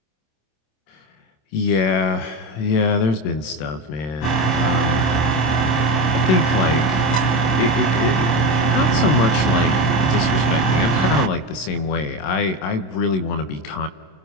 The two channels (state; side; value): late; right; 26 ms